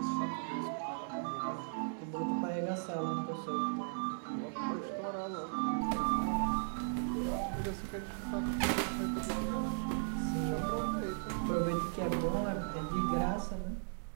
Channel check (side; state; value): left; silent; 53 dB below the other